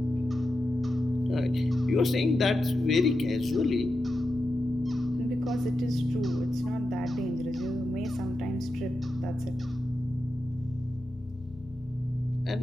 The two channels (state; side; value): normal; both; correlation 0.89